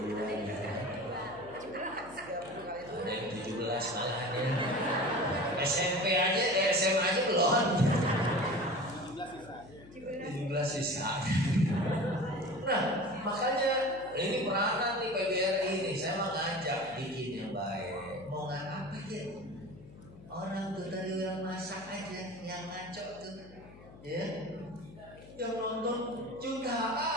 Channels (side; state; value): left; noise; hum, 19 dB below the sound